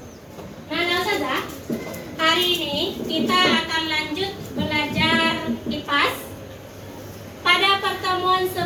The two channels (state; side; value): identical; both; correlation 1.00